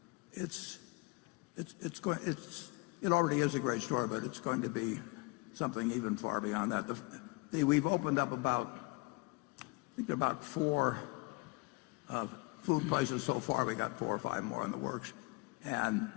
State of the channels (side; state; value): right; quieter; 26.5 dB